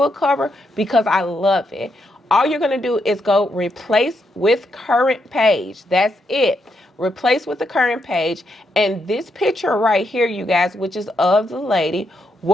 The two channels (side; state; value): both; normal; correlation 0.80